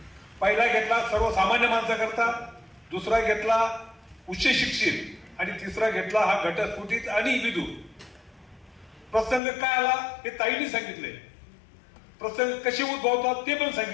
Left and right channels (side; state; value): right; drops out; at 9.4 s